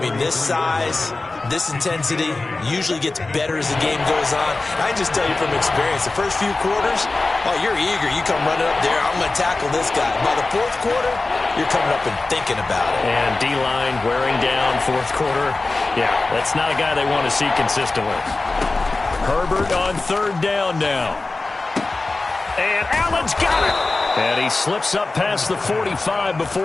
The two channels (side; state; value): right; quieter; 3.4 dB